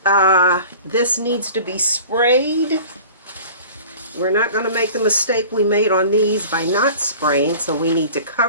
this needs to be sprayed. We're not going to make the mistake we made on these by not spraying, so we need to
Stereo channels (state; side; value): inverted; both; correlation -0.42